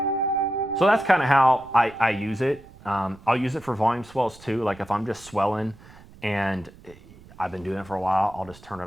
So that's kind of how I use it. I'll use it for volume swells too. Like if I'm just swelling and I've been doing it for a while, I'll just turn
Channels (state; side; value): noise; right; rumble, 22 dB below the sound